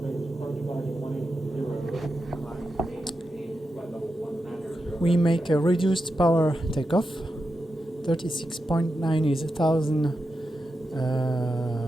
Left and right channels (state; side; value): normal; both; correlation 0.89